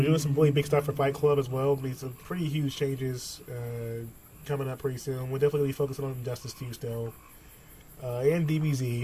doing some really big stuff for Fight Club as well. There'll be some pretty huge changes coming up pretty soon. We're definitely going to be focusing on Justice 2 still. And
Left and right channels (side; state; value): both; identical; correlation 1.00